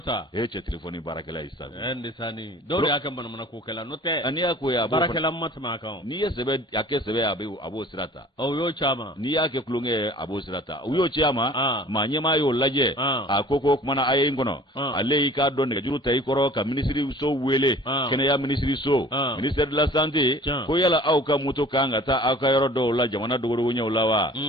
cɛ téléphone baarakɛla yi sa ndisani dɔw y'a kɛ manamana ko kɛla n'o tɛ ani y'a ko ya baarakɛla ma tɛmɛ a kan n'i ye sɛbɛ a kɛ sɛbɛ a b'o sira ta o y'o caman n'i y'a kɛ kulonkɛ ye a b'o sira ta u y'o ci a ma maa ɲɛmaa y'o lajɛ a ko kumana a ye n kɔnɔ ale y'i k'a dɔn nɛgɛjuru ta i kɔrɔ ka ministre so wele kɛnɛya ministre so ministère de la santé ko yala aw ka moto kan ka taa aw ka yɔrɔ dɔw la jamana dogodogo ɲɛw la wa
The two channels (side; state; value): both; normal; correlation 0.47